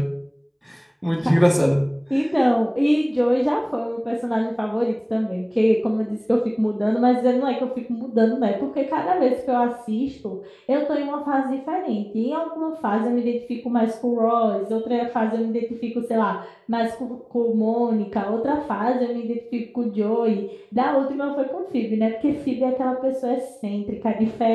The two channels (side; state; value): both; identical; correlation 1.00